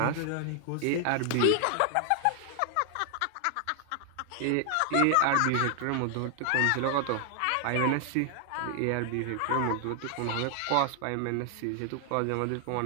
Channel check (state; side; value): different; both; correlation 0.00